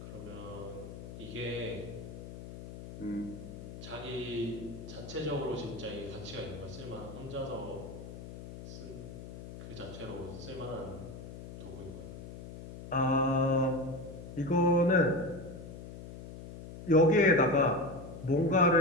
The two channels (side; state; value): left; noise; hum, 12 dB below the sound